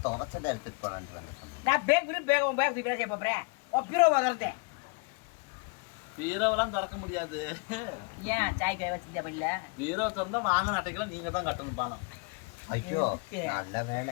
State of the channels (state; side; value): quieter; right; 31.2 dB